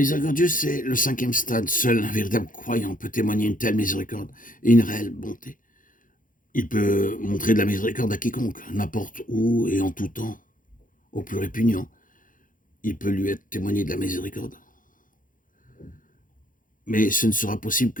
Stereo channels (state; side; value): late; right; 0.39 ms